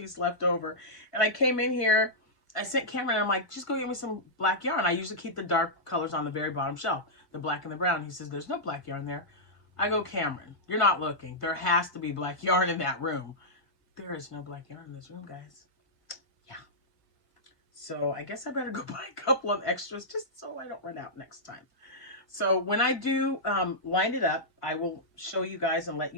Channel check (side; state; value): right; late; 1.5 ms